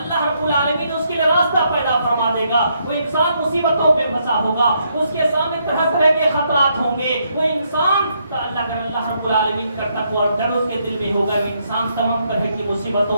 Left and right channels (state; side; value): inverted; both; correlation -0.75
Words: اللہ رب العالمین اس کے لیے راستہ پیدا فرما دے گا۔ وہ انسان مصیبتوں پہ پھنسا ہوگا، اس کے سامنے طرح طرح کے خطرات ہوں گے، وہ انسان اگر اللہ رب العالمین کا تقوی اور ڈر اس کے دل میں ہوگا، انسان تمام طرح کی